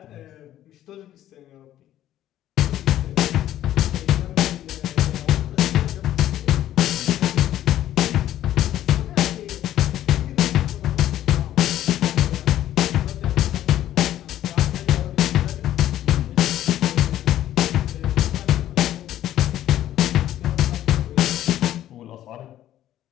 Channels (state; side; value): quieter; right; 12.6 dB